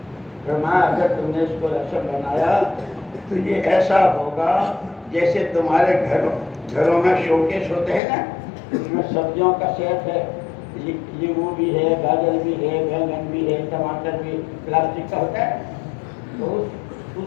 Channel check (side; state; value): right; drops out; at 8.0 s